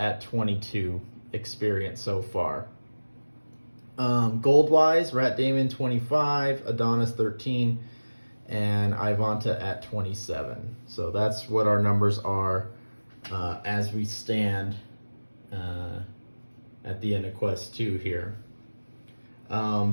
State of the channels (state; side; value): inverted; both; correlation -1.00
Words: 22 experience so far. Gold wise, Rat Damon 25, Adonis 13, and Ivanta at 27. So that's what our numbers are as we stand at the end of Quest 2 here.